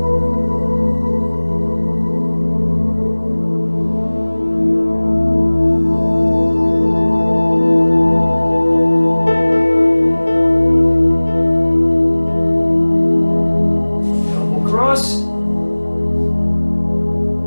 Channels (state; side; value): inverted; both; correlation -1.00